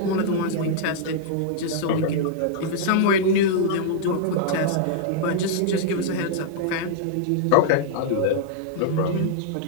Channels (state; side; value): different; both; correlation -0.01